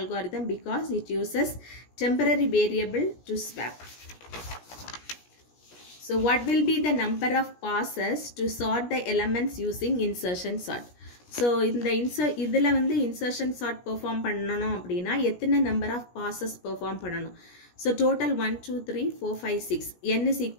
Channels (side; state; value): right; late; 17 ms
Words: because it uses temporary variable to swap. So what will be the number of passes to sort the elements using insertion sort? So இதில் வந்து insertion sort perform பண்ணணும் அப்படின்னா எத்தனை number of passes perform பண்ணணும்? So total 1, 2, 3, 4, 5, 6. n is